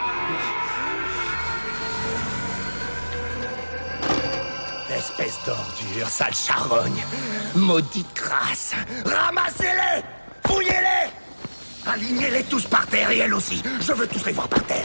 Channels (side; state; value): both; inverted; correlation -1.00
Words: Espèce d'ordure, sale charogne! Maudite crasse! Ramassez-les! Fouillez-les! Alignez-les tous par terre et elle aussi! Je veux tous les voir par